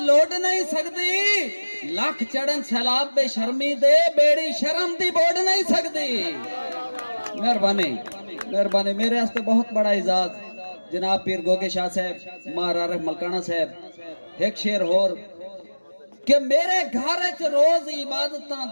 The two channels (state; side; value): inverted; both; correlation -1.00